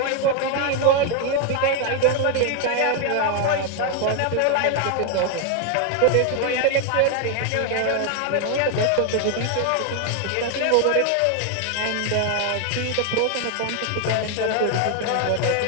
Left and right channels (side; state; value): both; different; correlation 0.00